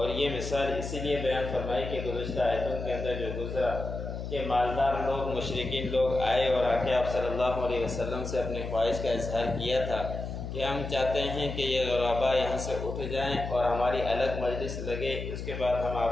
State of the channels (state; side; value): noise; left; hum, 6 dB below the sound